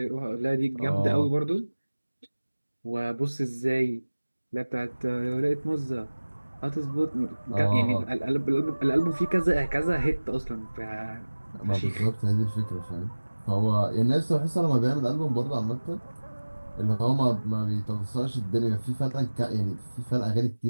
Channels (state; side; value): inverted; both; correlation -1.00